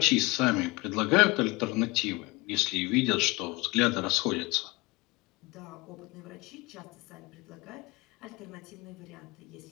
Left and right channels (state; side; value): quieter; right; 23.7 dB